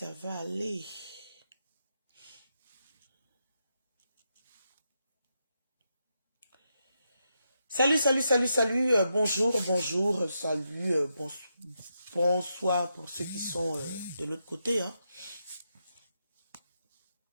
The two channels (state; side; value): inverted; both; correlation -0.84